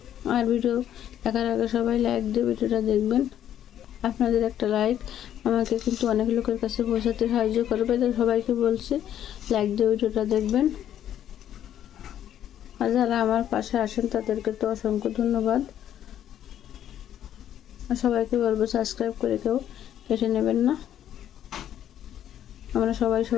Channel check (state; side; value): quieter; right; 10.7 dB